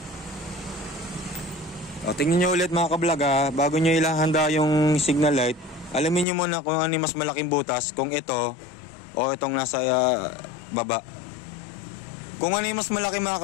O, tingnan nyo ulit mga kablog ha. Bago nyo ilahanda yung signal light, alamin nyo muna kung ano yung mas malaking butas. Kung ito o itong nasa baba. Kung ano yung mas malaki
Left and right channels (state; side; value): drops out; right; at 6.2 s